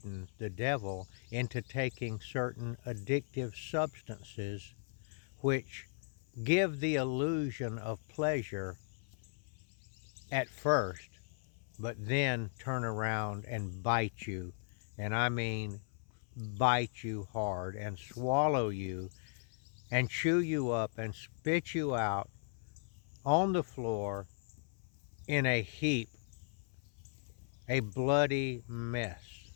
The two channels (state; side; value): silent; right; 53 dB below the other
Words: the devil, into taking certain addictive substances which give the illusion of pleasure at first, but then turn around and bite you. And I mean bite you hard and swallow you and chew you up and spit you out on the floor in a heap, a bloody mess.